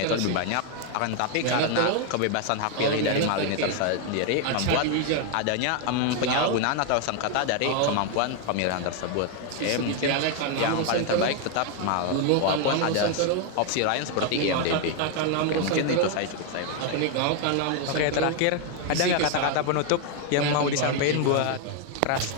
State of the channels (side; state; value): both; different; correlation 0.01